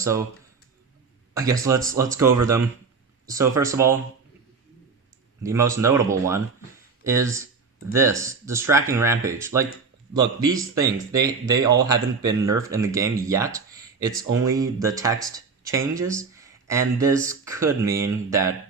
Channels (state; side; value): quieter; left; 4.8 dB